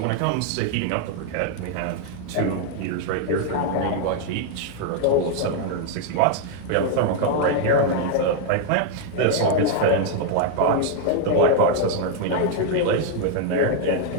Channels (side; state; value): both; different; correlation 0.00